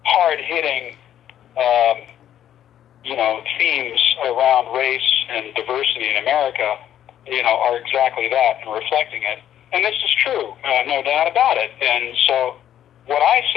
hard-hitting themes around race and diversity in America, are exactly that and reflecting it. And this is true, no doubt about it. And so what I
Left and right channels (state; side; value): quieter; right; 10.9 dB